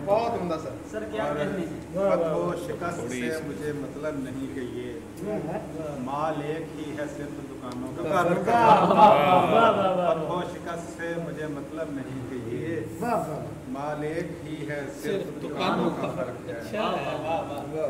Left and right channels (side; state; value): both; identical; correlation 1.00